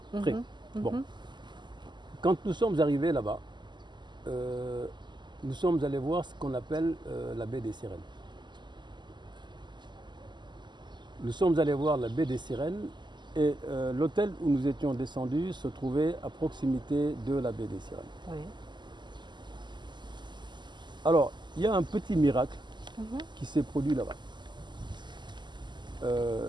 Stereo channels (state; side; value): late; left; 0.21 ms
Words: Très. Bon. Quand nous sommes arrivés là-bas, nous sommes allés voir ce qu'on appelle la baie des Sirènes. Nous sommes allés voir la baie des Sirènes et l'hôtel où nous étions descendus se trouvait à proximité de la baie des Sirènes. Oui. Alors, il y a un petit miracle qui s'est produit là-bas.